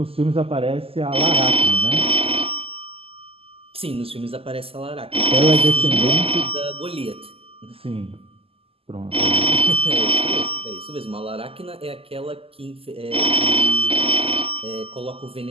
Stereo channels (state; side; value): late; left; 0.28 ms